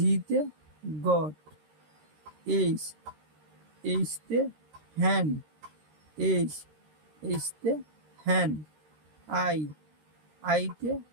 গট। এইচতে হ্যান্ড, এইচতে হ্যান্ড। আইতে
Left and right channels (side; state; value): left; late; 13 ms